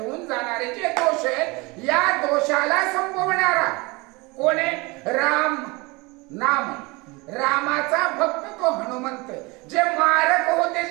जाणारे जे दोष आहेत या दोषाला संपवणारा कोण आहे. राम नाम रामाचा भक्त तो हनुमंत. जे मारक होते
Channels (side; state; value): left; quieter; 25.3 dB